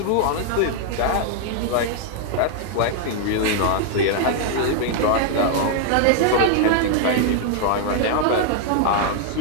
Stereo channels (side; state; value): both; different; correlation 0.00